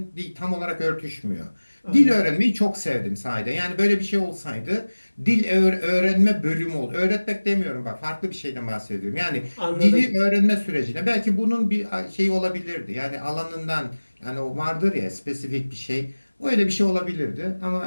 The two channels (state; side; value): inverted; both; correlation -1.00